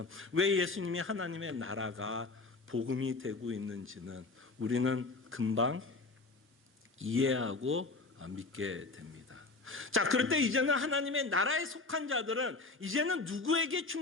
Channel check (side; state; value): right; quieter; 3.6 dB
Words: 왜 예수님이 하나님의 나라가 복음이 되고 있는지는 우리는 금방 이해하고 믿게 됩니다. 자, 그럴 때 이제는 하나님의 나라에 속한 자들은 이제는 누구에게